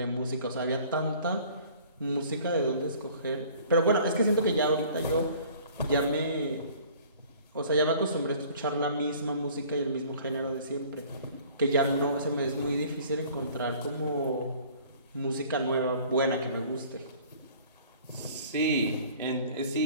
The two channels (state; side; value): inverted; both; correlation -0.51